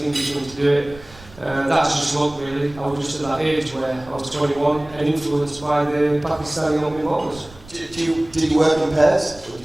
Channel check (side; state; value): right; noise; rumble, 21 dB below the sound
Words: Englishman to do it. That's just luck, really. I was just at that age where I was 21 and influenced by the Pakistani opening bowlers. Did you work in pairs, or did